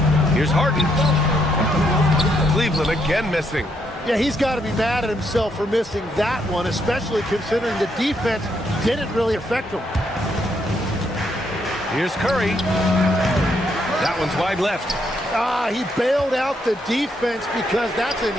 Here's Harden. Cleveland again missing. Yeah, he's got to be mad at himself for missing that one, especially considering the defense didn't really affect him. Here's Curry. That one's wide left. He bailed out the defense because that's an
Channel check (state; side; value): normal; both; correlation 0.75